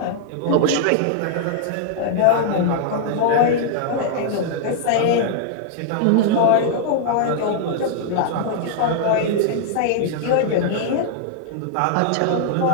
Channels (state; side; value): different; both; correlation -0.01